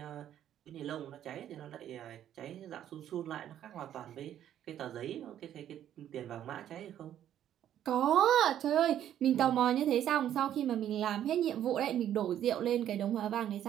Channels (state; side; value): quieter; left; 10.9 dB